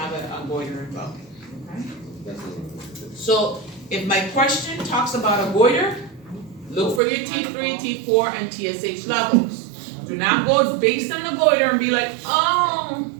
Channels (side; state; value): left; drops out; at 7.0 s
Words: a goiter in both. Okay. So if my question talks about a goiter, look for your T3, T4, and TSH levels. Do not go based on the goiter and be like, oh,